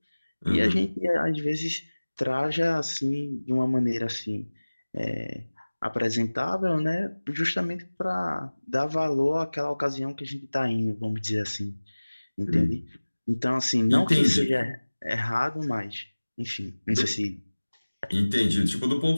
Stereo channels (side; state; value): both; inverted; correlation -1.00